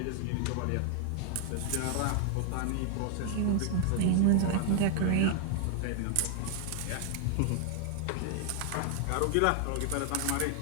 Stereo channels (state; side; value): different; both; correlation 0.00